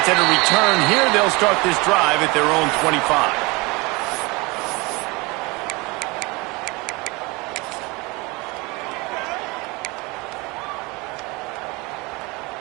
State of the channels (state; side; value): quieter; left; 25.5 dB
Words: at a return here. They'll start this drive at their own 25.